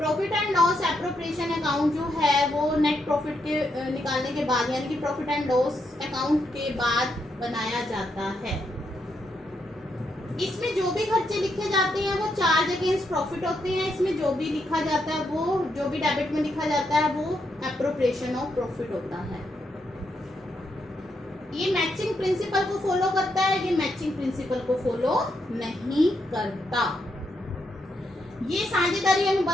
and loss appropriation account जो है वो नेट प्रॉफिट के निकालने के बाद यानी कि प्रॉफिट एंड लॉस अकाउंट के बाद बनाया जाता है। इसमें जो भी खर्चे लिखे जाते हैं वो चार्ज अगेंस्ट प्रॉफिट होते हैं। इसमें जो भी लिखा जाता है वो जो भी डेबिट में लिखा जाता है वो एप्रोप्रिएशन ऑफ प्रॉफिट होता है। ये मैचिंग प्रिंसिपल को फॉलो करता है, ये मैचिंग प्रिंसिपल को फॉलो नहीं करता। ये साझेदारी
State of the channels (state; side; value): normal; both; correlation 0.80